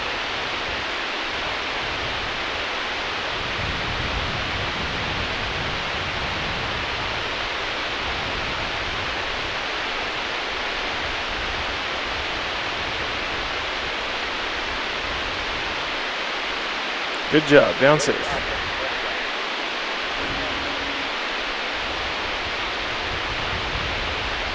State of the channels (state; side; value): identical; both; correlation 1.00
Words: Good job. Down safe.